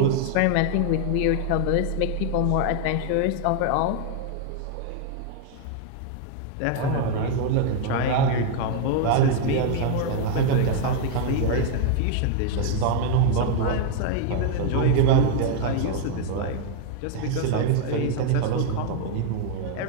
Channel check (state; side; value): different; both; correlation 0.00